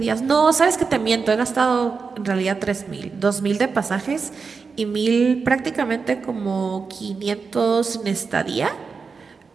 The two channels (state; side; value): quieter; left; 5.0 dB